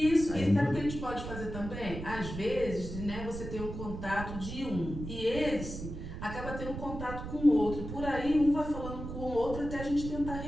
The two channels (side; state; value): right; noise; rumble, 8 dB below the sound